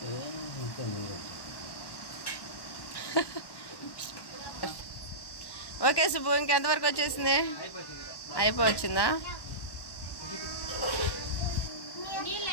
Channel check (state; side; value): late; right; 1.1 ms